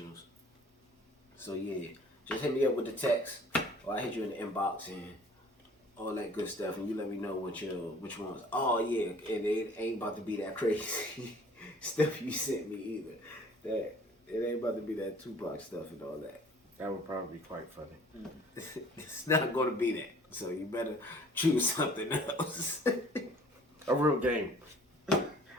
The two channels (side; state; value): both; normal; correlation 0.51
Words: So yeah, just hit me up with the text, or I hit you in the inbox and all that good stuff, and you let me know which ones. Oh yeah, and it ain't about to be that crazy stuff you sent me either. That it ain't about to be that Tupac stuff and all that. That would probably be quite funny. It's not going to be that. So you better choose something else. A real game.